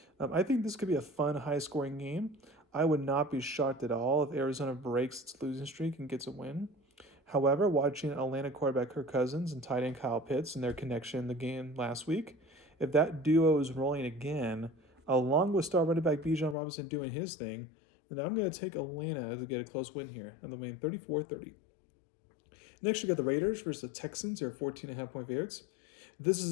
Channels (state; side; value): drops out; right; at 16.6 s